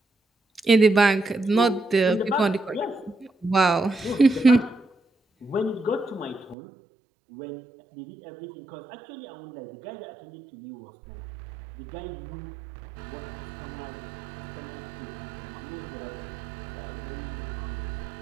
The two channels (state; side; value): drops out; left; at 6.6 s